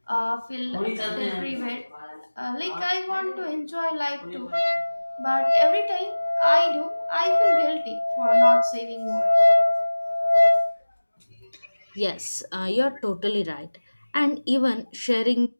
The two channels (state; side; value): inverted; both; correlation -1.00